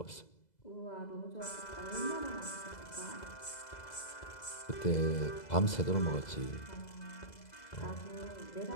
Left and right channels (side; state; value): right; late; 2.0 ms